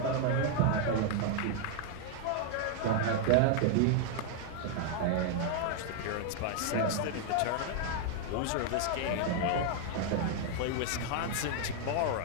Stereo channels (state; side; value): different; both; correlation 0.00